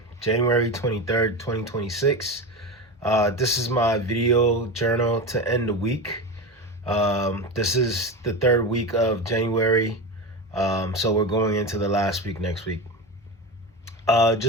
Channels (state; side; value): normal; both; correlation 0.22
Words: January 23rd, 2026. This is my video journal to end the week. This is the third week of January, so we're going into the last week next week.